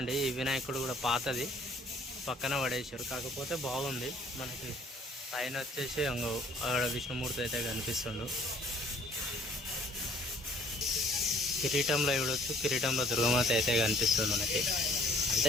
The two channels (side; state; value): both; normal; correlation 0.57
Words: ఈ వినాయకుడు కూడా పాతది పక్కన పడేసారు, కాకపోతే బాగుంది. మనకి పైన వచ్చేసి అక్కడ విష్ణుమూర్తి అయితే కనిపిస్తుండు. కిరీటంలో చూడొచ్చు, కిరీటంలో దుర్గమాత అయితే కనిపిస్తుంది మనకి.